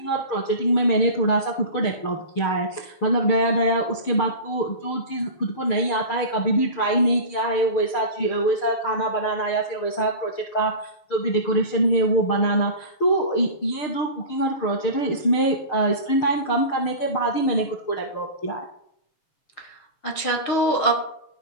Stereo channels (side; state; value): right; late; 6.6 ms